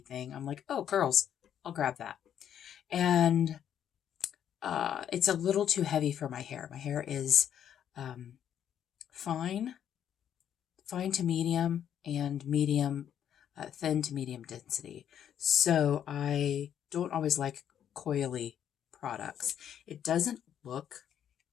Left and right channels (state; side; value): quieter; right; 9.6 dB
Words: I'm like, oh, curls, I'll grab that. And it's a little too heavy for my hair. My hair is fine to medium, and thin to medium density. So I don't always like coily products. It doesn't look